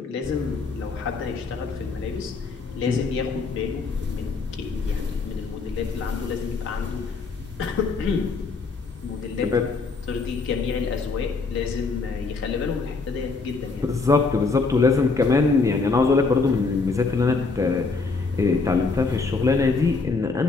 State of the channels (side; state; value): right; quieter; 4.2 dB